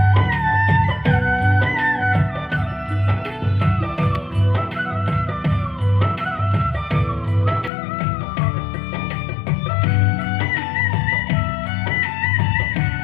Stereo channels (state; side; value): drops out; right; at 7.7 s